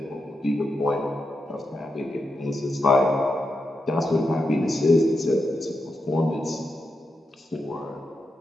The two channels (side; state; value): both; normal; correlation 0.86